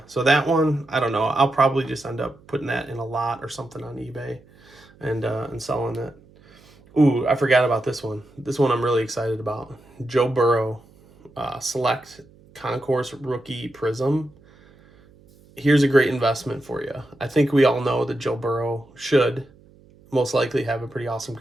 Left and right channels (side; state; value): right; noise; hum, 27 dB below the sound